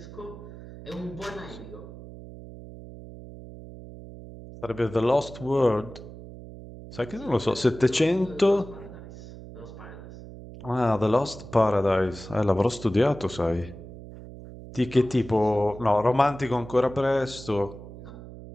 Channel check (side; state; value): right; noise; hum, 15 dB below the sound